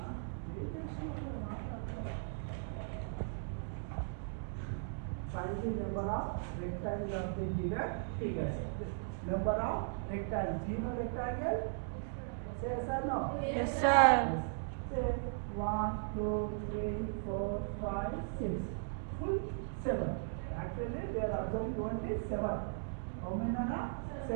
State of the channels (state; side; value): silent; left; digital silence